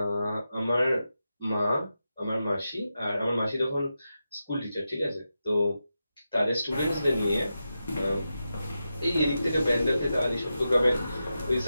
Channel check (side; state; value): both; inverted; correlation -0.90